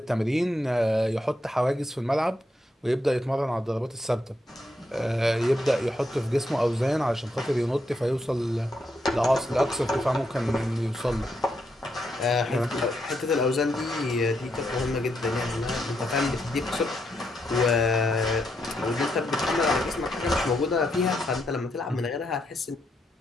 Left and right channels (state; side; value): normal; both; correlation 0.80